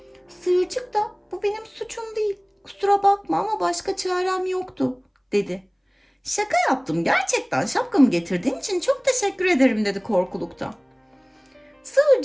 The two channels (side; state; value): both; identical; correlation 1.00